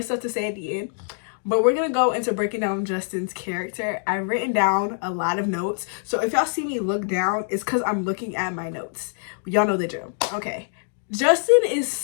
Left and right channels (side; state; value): right; silent; digital silence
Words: stuff to say at the end, but we're going to go into breaking down Justin's character. I've written down a lot of notes, so if y'all see me look down, it's because I'm looking at my notes. Y'all know the drill. Okay. Justin is